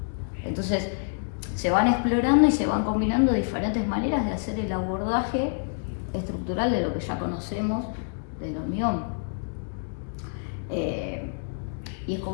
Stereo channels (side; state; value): right; silent; digital silence